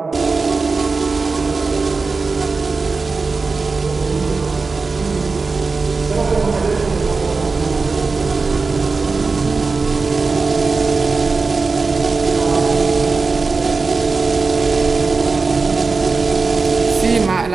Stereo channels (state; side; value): quieter; left; 4.2 dB